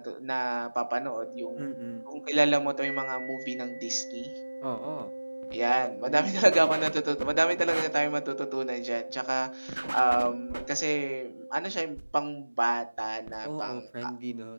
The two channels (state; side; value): inverted; both; correlation -1.00